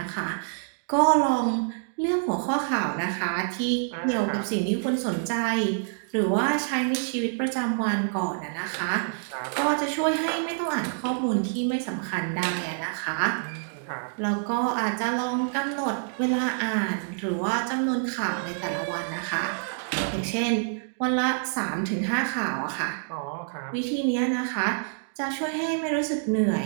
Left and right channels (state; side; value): silent; left; digital silence